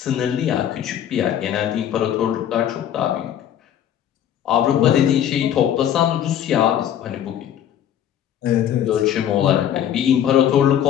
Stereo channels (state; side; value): quieter; right; 10.2 dB